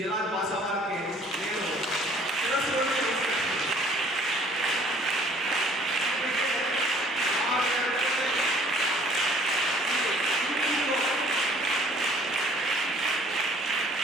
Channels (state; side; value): normal; both; correlation 0.56